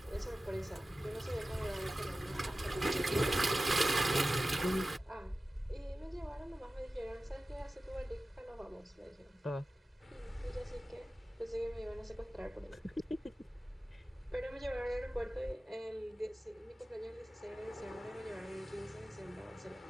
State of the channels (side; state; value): both; normal; correlation 0.95